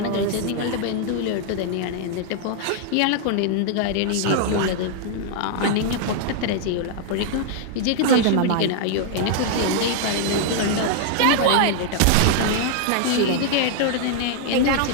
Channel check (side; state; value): both; different; correlation 0.00